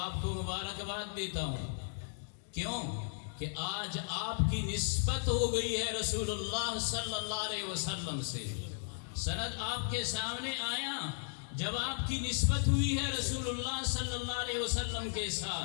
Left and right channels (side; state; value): right; silent; digital silence